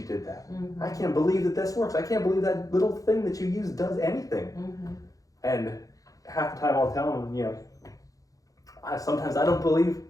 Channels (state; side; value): late; right; 0.17 ms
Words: did that. I can't believe that this works. I can't believe that little thing that you use does anything. And half the time I'll tell them, you know, sometimes I can't